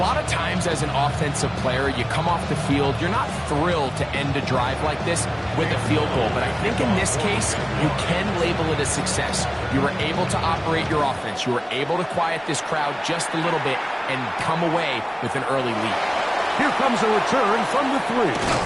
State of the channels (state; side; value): identical; both; correlation 1.00